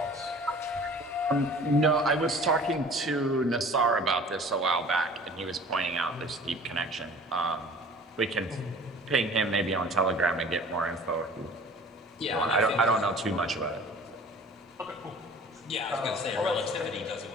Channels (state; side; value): normal; both; correlation 0.46